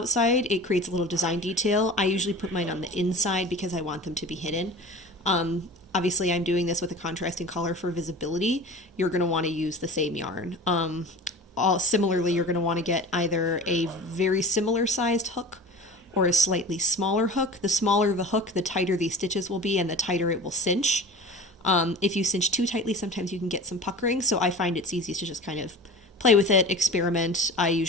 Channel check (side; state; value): both; normal; correlation 0.36